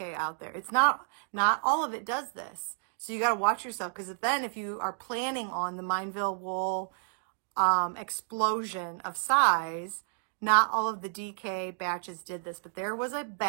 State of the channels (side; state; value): left; silent; digital silence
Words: out there. It's not all of it does this. So you got to watch yourself, because then if you are planning on the Mineville wool explosion of size, not all of the DK batches did this, but there was a